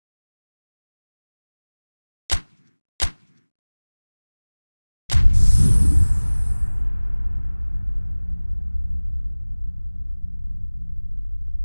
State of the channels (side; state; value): both; inverted; correlation -1.00